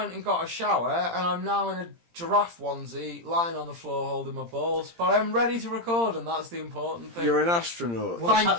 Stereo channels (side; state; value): left; late; 17 ms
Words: and got a shower, and I'm now in a giraffe onesie, lying on the floor holding my balls. But I'm ready to record, and that's the important thing. You're an astronaut. Thank